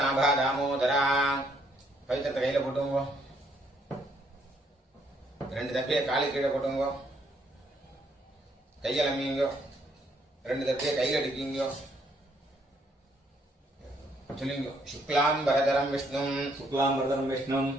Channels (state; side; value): normal; both; correlation 0.70